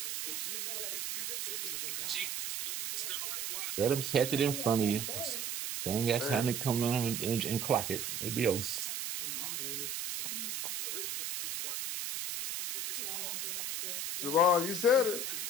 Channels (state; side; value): noise; right; hiss, 3 dB below the sound